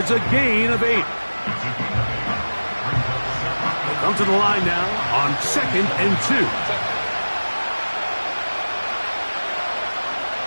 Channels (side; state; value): both; inverted; correlation -1.00